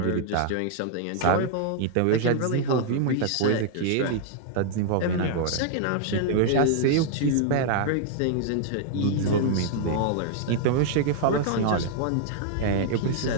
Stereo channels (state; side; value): different; both; correlation -0.01